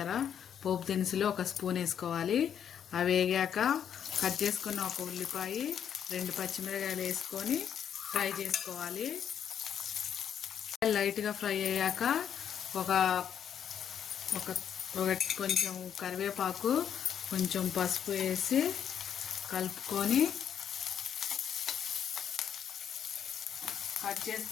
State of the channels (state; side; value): quieter; right; 8.8 dB